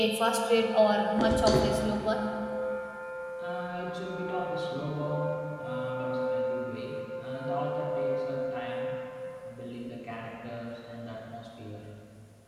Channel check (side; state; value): both; identical; correlation 1.00